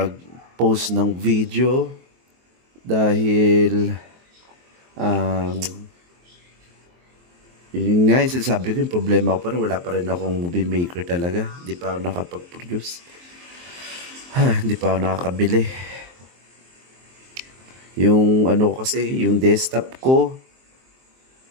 ng video dahil um, yun nga yung sinasabi ko, yung problema ko pa rin, wala pa rin akong movie maker talaga. Hindi pa ako nakapag-produce. Hindi pa ako nakakabili. Yung ano ko kasi, yung desktop ko,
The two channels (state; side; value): late; left; 23 ms